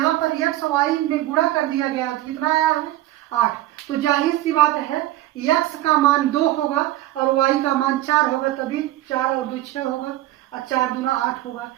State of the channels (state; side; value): quieter; left; 15.2 dB